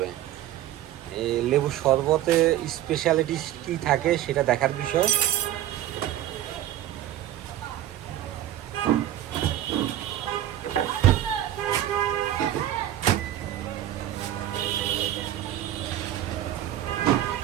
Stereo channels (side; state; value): left; quieter; 12.6 dB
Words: এই লেবু শরবতে স্পেশালিটি কি থাকে সেটা দেখার বিষয়।